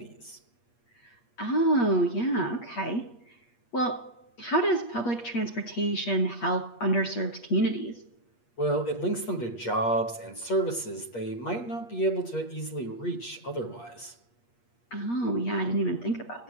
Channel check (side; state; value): right; late; 8.4 ms